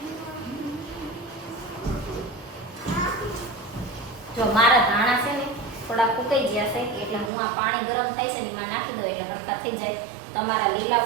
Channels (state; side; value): drops out; left; at 7.3 s